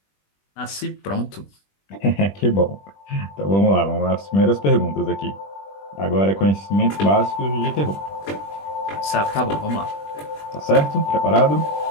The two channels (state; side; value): late; right; 20 ms